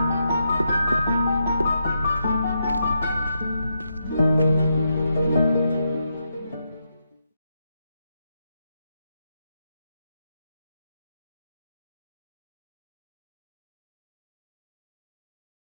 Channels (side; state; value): both; inverted; correlation -0.83